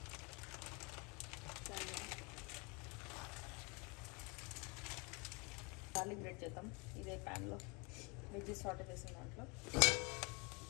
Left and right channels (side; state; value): right; quieter; 30.1 dB